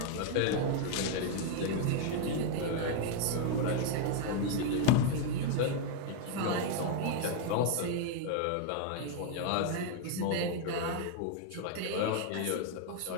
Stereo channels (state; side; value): different; both; correlation 0.00